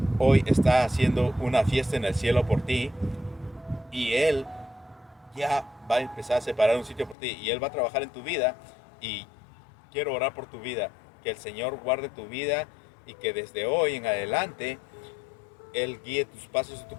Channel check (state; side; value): drops out; right; at 7.2 s